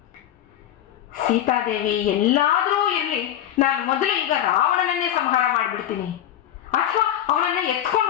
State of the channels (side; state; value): right; quieter; 11.3 dB